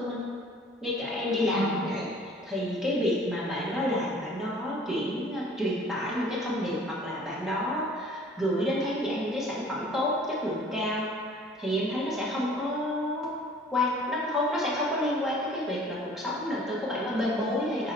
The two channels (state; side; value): normal; both; correlation 0.51